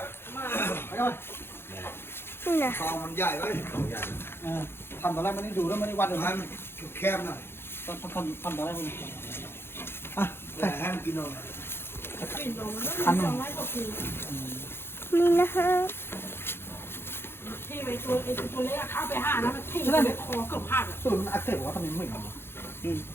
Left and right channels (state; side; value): late; right; 0.11 ms